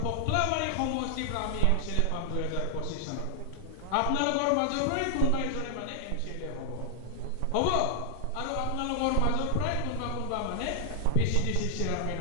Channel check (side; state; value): both; different; correlation 0.00